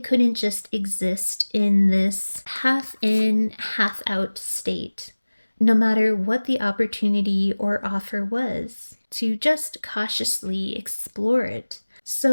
just exist in this half in, half out state, no matter what the opportunity or offer was, to just cautiously explore it.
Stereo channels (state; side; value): inverted; both; correlation -1.00